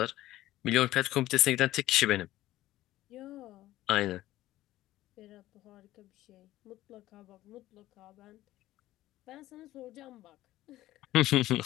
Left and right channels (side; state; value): right; quieter; 15.5 dB